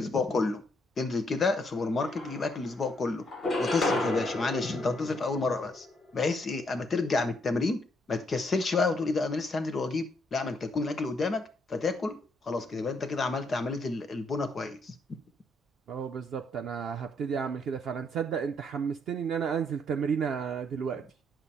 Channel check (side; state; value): both; normal; correlation 0.72